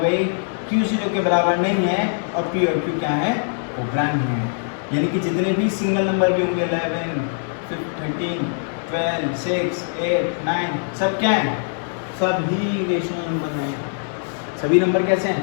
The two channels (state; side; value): silent; right; digital silence